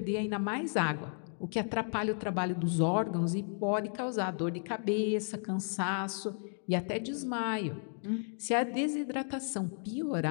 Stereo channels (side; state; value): right; silent; 55 dB below the other